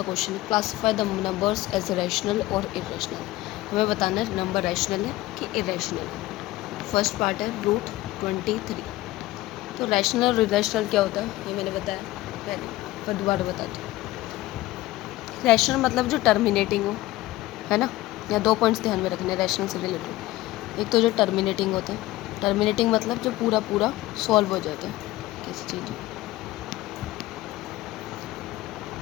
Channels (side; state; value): right; quieter; 17.6 dB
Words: क्वेश्चन है, classify the numbers as rational और इरेशनल। हमें बताना है नंबर रैशनल है कि इरेशनल है। फर्स्ट पार्ट है रूट 23। तो रैशनल और इरेशनल क्या होता है ये मैंने बताया पहले, पर दोबारा बताती हूँ। रैशनल मतलब जो टर्मिनेटिंग हो, है ना। या दो पॉइंट्स ध्यान में रखने रैशनल से रिलेटेड। एक तो जो टर्मिनेटिंग होता है, टर्मिनेटिंग मतलब जो पूरा पूरा सॉल्व हो जाता है किसी चीज़,